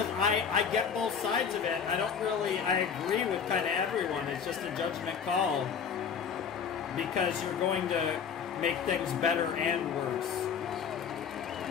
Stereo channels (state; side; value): quieter; right; 7.0 dB